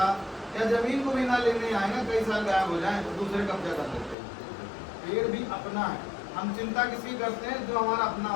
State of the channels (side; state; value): right; drops out; at 4.2 s